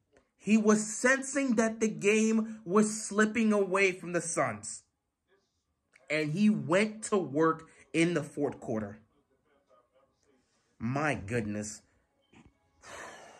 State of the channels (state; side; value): identical; both; correlation 1.00